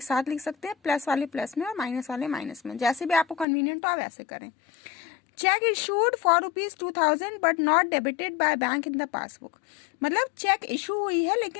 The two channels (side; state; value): right; drops out; at 3.5 s